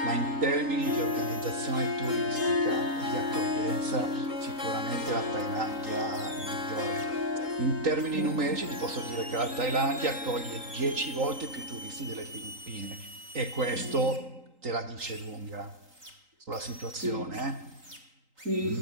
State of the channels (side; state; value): left; late; 3.8 ms